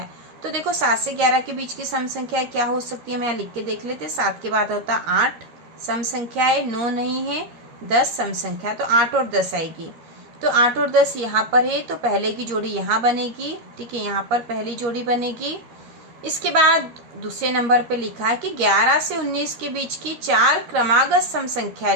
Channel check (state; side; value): late; left; 13 ms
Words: तो देखो 7 से 11 के बीच की सम संख्या क्या हो सकती है, मैं यहाँ लिख के देख लेते। 7 के बाद होता 8 सम संख्या है, 9 नहीं है, 10 सम संख्या। तो 8 और 10 आएगी। तो 8 और 10 यहाँ पर है तो पहले की जोड़ी यहाँ बनेगी। ठीक है, यहाँ पर पहली जोड़ी बनेगी। इसके बाद दूसरे नंबर पे लिखा है कि 11 से 19 के बीच की 4 क्रमागत सम संख्या